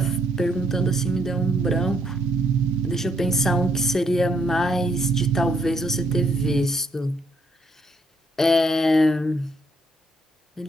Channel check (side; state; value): both; normal; correlation 0.71